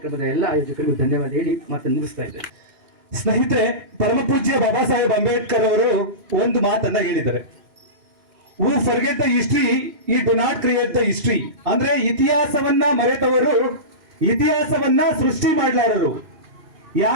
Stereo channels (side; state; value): left; late; 2.5 ms